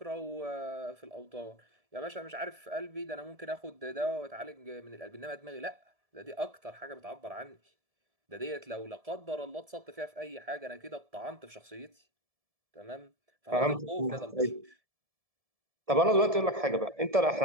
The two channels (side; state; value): left; late; 1.7 ms